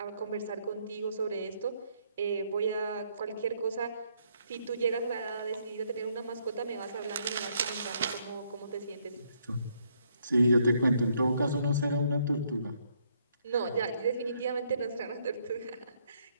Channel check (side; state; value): both; inverted; correlation -0.71